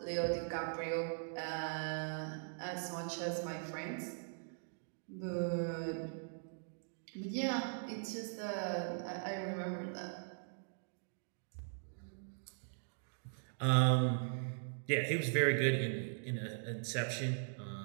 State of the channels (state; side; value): silent; left; digital silence